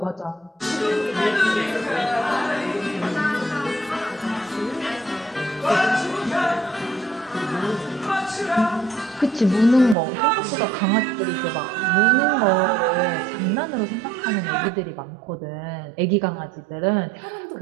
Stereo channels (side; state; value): left; drops out; at 10.0 s